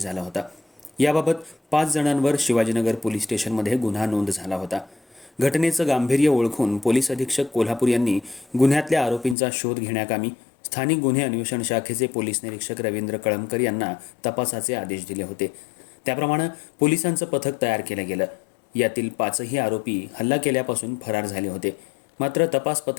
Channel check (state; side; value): drops out; right; at 9.3 s